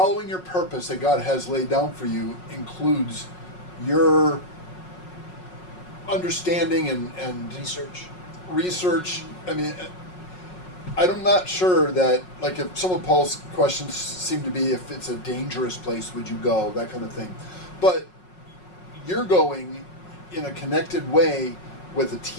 your purpose that God has laid down for you includes your understanding and research. I mean, I'm not sure that, like, if some of Paul's questions seem to be if it's a dangerous place, would you go, that kind of thing. But you're going in a connected way with a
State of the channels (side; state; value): right; late; 5.5 ms